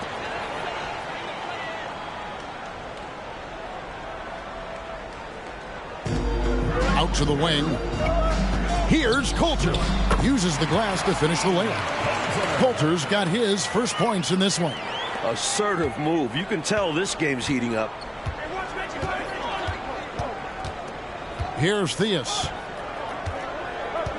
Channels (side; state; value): both; identical; correlation 1.00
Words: Out to the wing. Here's Coulter. Uses the glass to finish the layup. Coulter's got his first points in this one. Assertive move. You can tell this game's heating up. Here's Theus.